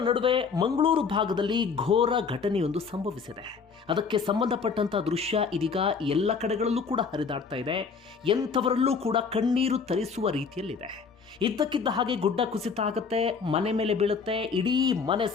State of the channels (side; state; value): right; quieter; 5.5 dB